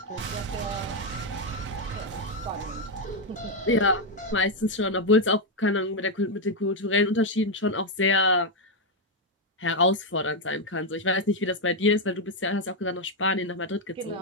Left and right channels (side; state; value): both; normal; correlation 0.02